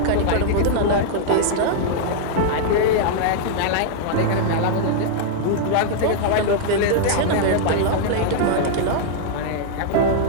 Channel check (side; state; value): both; different; correlation -0.01